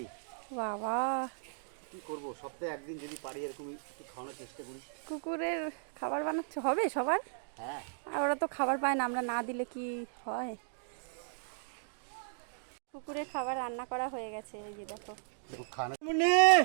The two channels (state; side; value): silent; left; digital silence